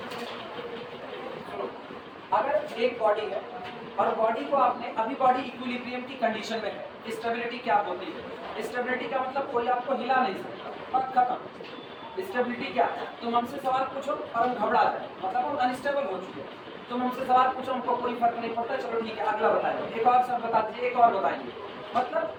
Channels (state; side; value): identical; both; correlation 1.00